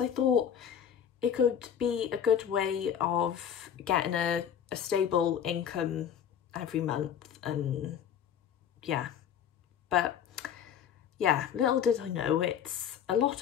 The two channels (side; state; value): right; quieter; 8.8 dB